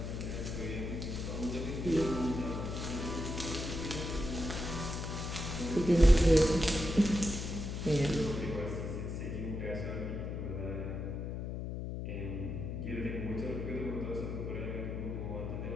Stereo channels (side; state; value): left; noise; hum, 4 dB below the sound